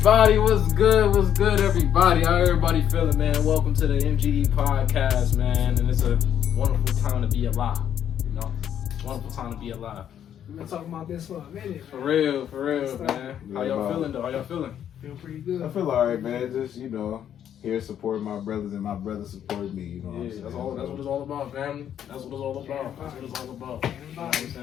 everybody? What's good? What's good, everybody? How everybody feeling, man? Welcome to the MGE podcast, man. And it's a wonderful time to be alive. You know, wonderful time to be alive. We've been talking about this for a minute, man. For real, man. How y'all feeling, though? How y'all feeling? Feel pretty good. I feel alright, man. Just, here supporting my brothers and my brothers supporting me, you know what I'm saying? That's what it's all about, family. That's what it's all about. That's what it's all about. You know what I'm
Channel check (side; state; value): right; quieter; 9.8 dB